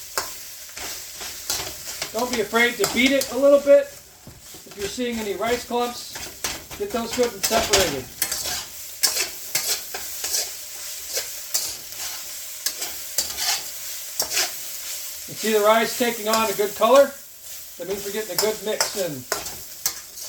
Don't be afraid to beat it a little bit. If you're seeing any rice clumps, get those good and separated. You see the rice taking on a good color? That means we're getting a good mix in.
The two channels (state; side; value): identical; both; correlation 1.00